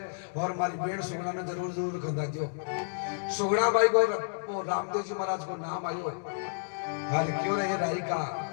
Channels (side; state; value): right; silent; digital silence